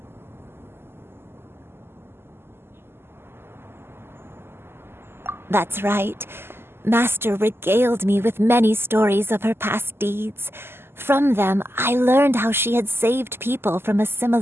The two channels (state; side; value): late; left; 0.12 ms